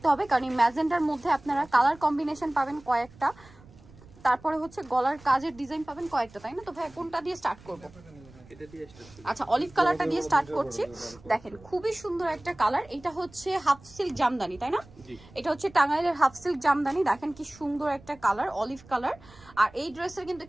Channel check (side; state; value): right; noise; rumble, 23 dB below the sound